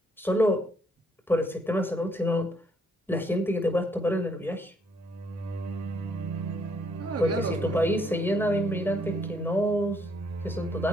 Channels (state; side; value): normal; both; correlation 0.69